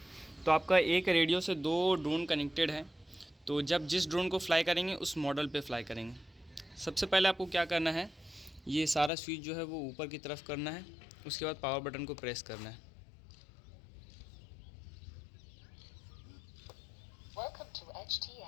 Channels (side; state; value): right; drops out; at 9.1 s